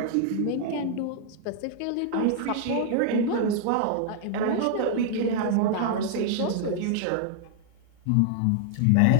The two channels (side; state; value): both; different; correlation -0.01